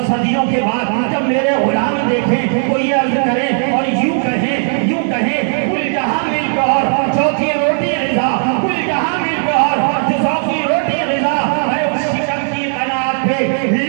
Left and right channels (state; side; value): silent; left; 65 dB below the other